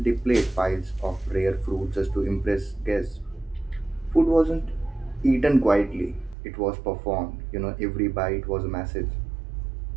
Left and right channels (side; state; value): left; drops out; at 6.4 s